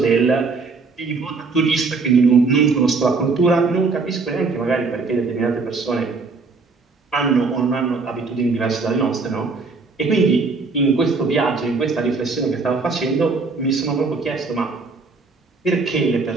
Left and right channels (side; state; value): left; quieter; 4.2 dB